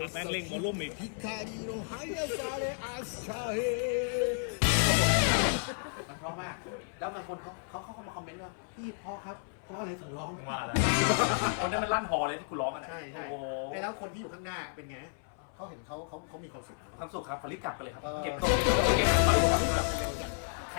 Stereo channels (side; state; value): right; silent; 56 dB below the other